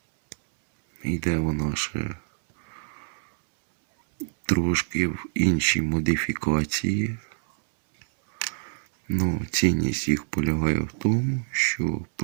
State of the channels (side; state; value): left; silent; digital silence